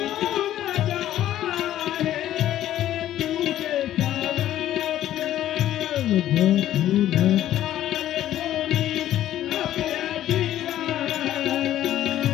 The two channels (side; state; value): right; quieter; 12.6 dB